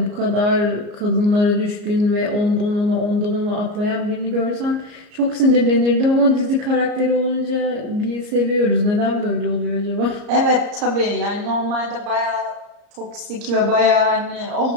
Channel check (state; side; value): late; left; 34 ms